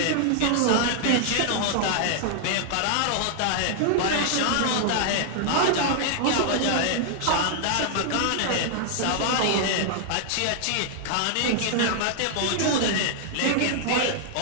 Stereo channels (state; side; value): different; both; correlation -0.01